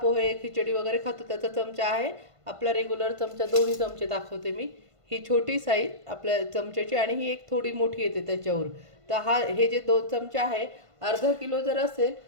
खिचडी वगैरे खातो त्याचा चमचा आहे. आपला रेग्युलर चमचा, दोन्ही चमचे दाखवते मी. ही छोटी साईज आपल्या चमच्याची आणि ही एक थोडी मोठी येते त्याच्यावर. तर हे जे 2 चमचे आहे, अर्धा किलो जर असेल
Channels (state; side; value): late; left; 1.5 ms